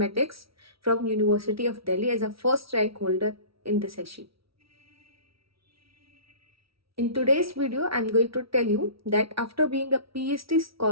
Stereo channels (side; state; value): left; late; 0.75 ms